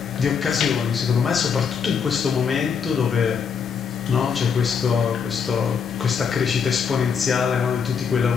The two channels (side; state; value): right; quieter; 6.5 dB